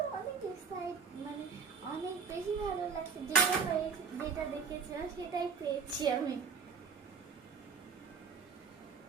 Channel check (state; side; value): quieter; left; 5.7 dB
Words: অনেক এক্সাইট, মানে অনেক বেশি ভালো লাগছে। যেটা দেখেছিলাম সেটাই পেয়েছি আমি।